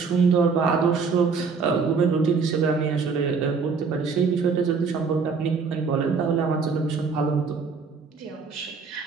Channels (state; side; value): quieter; left; 5.1 dB